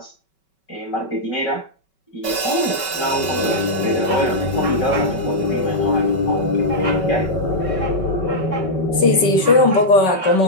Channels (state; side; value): late; right; 5.3 ms